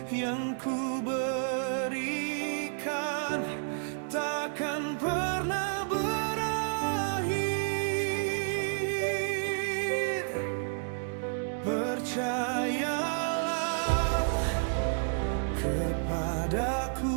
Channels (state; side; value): silent; left; digital silence